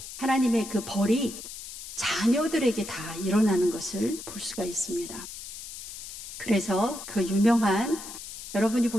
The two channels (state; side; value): noise; left; hiss, 11 dB below the sound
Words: 하나님의 그 벌이 자녀들에게 다 일어나는 것을 볼 수가 있습니다. 그래서 그 유명한, 여러분이